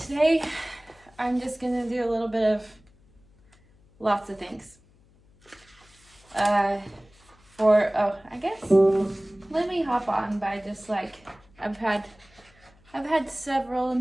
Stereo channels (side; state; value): left; noise; hum, 30 dB below the sound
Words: today I'm just gonna do a little bit of lots of things. I guess let me hop on by just like I've had several